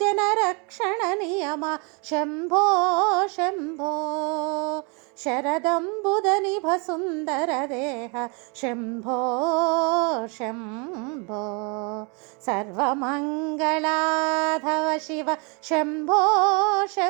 जनरक्षण नियम शम्भो शम्भो शरदम्बुदनिभ सुन्दर देह शम्भो शम्भो सर्वमङ्गलाधव शिव शम्भो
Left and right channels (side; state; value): left; quieter; 33.1 dB